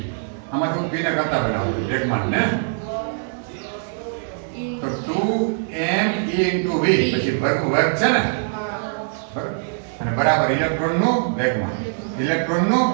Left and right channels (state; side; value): silent; left; 57 dB below the other